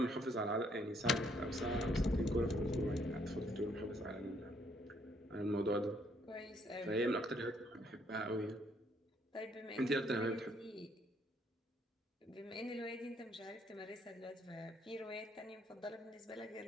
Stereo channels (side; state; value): both; normal; correlation 0.69